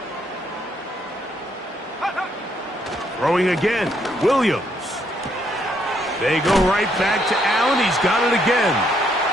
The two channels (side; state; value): both; normal; correlation 0.72